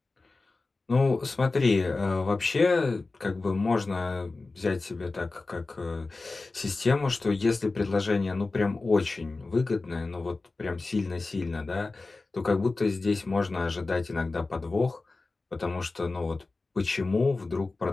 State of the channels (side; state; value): right; quieter; 3.5 dB